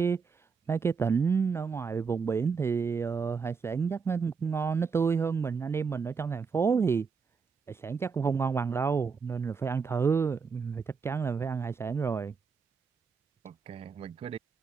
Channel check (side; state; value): left; quieter; 5.5 dB